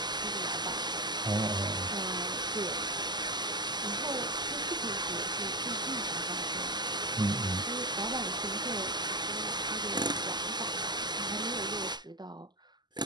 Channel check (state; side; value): late; left; 0.21 ms